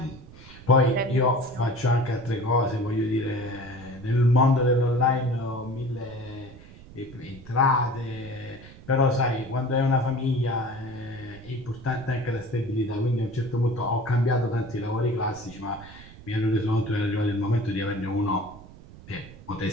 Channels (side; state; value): right; noise; rumble, 19 dB below the sound